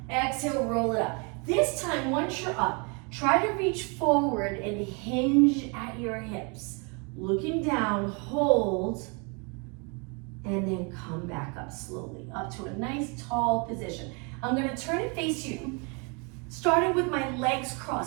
Exhale, roll it up. This time, once you're up, try to reach forward and hinge at your hips. Looking down, hold, and then come back up slowly, up to a nice tall position. I'm gonna turn and face you, starting with my legs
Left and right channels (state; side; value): quieter; left; 33.5 dB